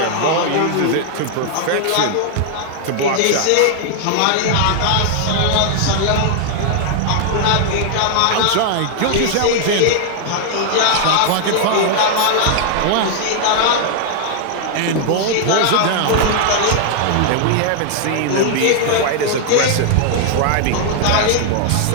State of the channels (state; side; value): different; both; correlation 0.00